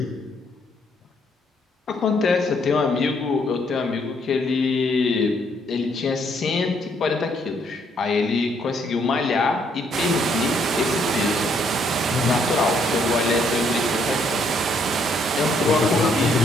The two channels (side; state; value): both; normal; correlation 0.69